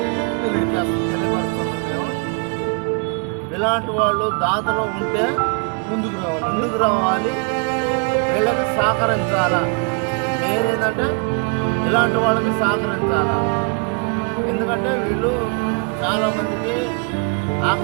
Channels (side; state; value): left; quieter; 35.4 dB